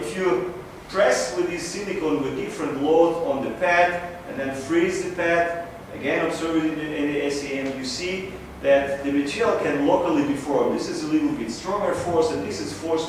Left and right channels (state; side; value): identical; both; correlation 1.00